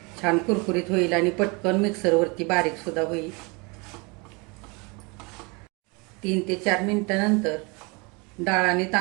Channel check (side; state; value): left; quieter; 29.1 dB